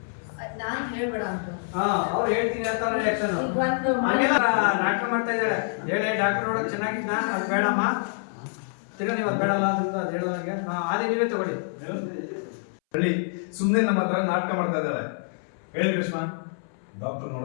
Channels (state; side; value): silent; right; 61 dB below the other